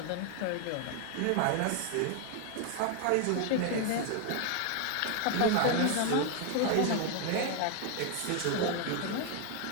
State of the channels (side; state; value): both; different; correlation 0.00